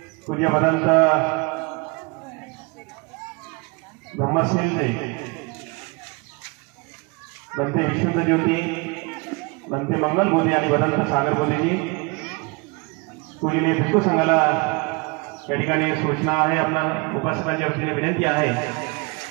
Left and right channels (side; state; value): left; quieter; 28.6 dB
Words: पूज्य भदंत ब्रह्मसिंहजी, भंते विशुद्ध ज्योती, भंते मंगल बोधी आणि भदंत सागर बोधीजी. पूजनीय भिक्खू संघाला या ठिकाणी सूचना आहे, आपल्या उपासकांच्या वतीने विनंती आहे